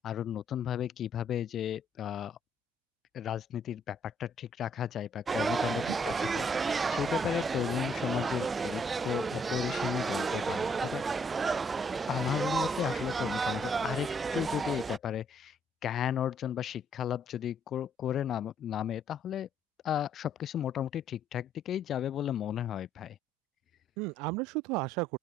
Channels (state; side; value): normal; both; correlation 0.69